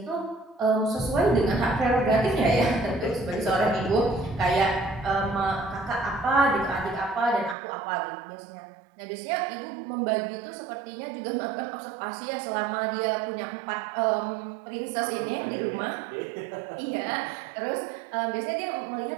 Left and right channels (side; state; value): left; drops out; at 7.6 s